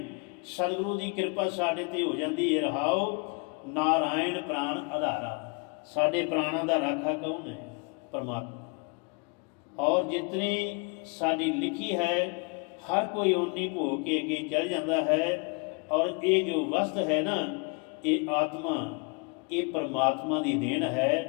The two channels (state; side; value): quieter; right; 31.7 dB